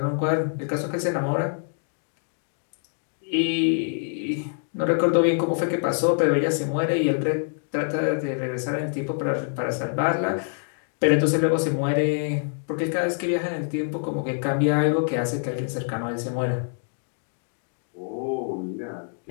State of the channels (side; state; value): right; silent; digital silence